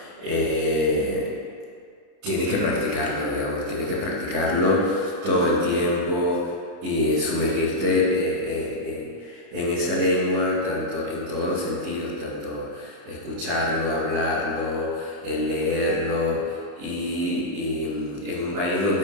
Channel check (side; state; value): left; late; 34 ms